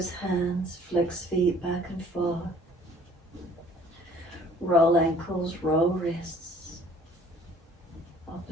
hands, flex feet back and forth, roll ankles, roll wrists,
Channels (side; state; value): both; normal; correlation 0.54